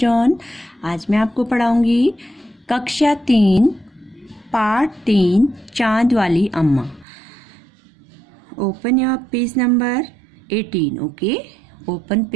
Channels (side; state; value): left; drops out; at 7.1 s